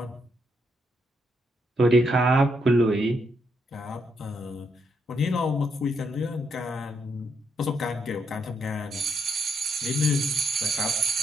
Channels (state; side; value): normal; both; correlation 0.76